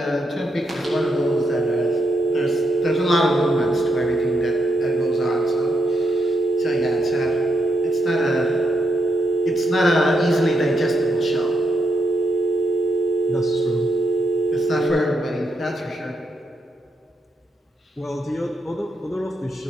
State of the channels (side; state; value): both; normal; correlation 0.82